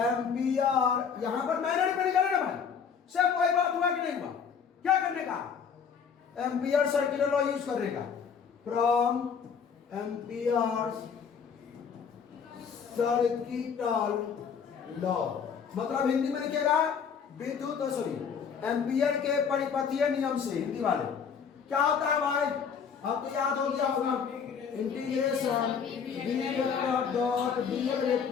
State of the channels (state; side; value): quieter; right; 6.7 dB